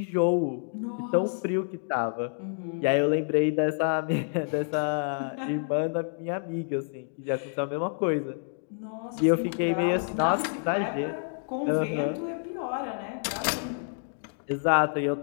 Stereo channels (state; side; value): silent; right; digital silence